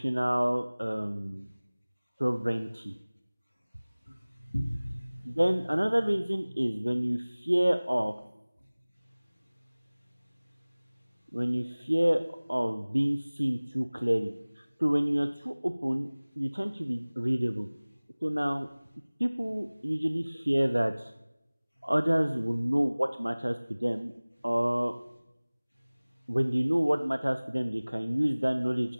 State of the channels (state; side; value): inverted; both; correlation -1.00